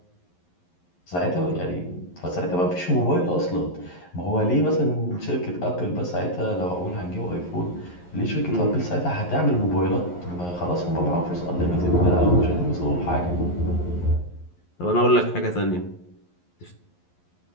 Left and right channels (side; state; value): right; late; 11 ms